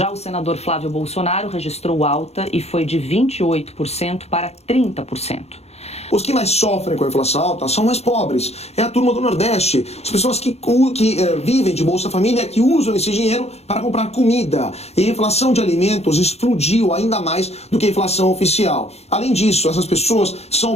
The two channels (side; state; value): right; late; 0.31 ms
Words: o senador Flávio Bolsonaro registrou alta e foi de 28% para 30%. Os que mais sofrem com a inflação alta são mais pobres. É a turma do Nordeste. As pessoas que vivem de Bolsa Família, que usam esse dinheiro para comprar comida. E a inflação de alimentos explodiu ainda mais do que a inflação oficial. Além disso, essas pessoas são